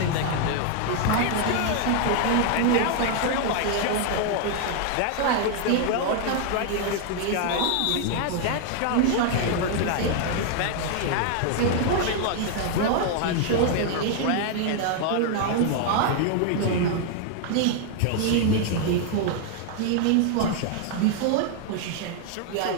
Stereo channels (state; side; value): different; both; correlation 0.00